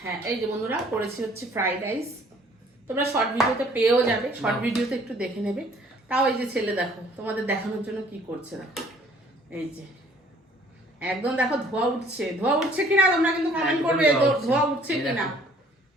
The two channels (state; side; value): normal; both; correlation 0.57